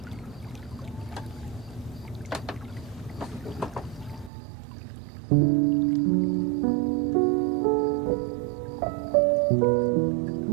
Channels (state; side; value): drops out; left; at 4.3 s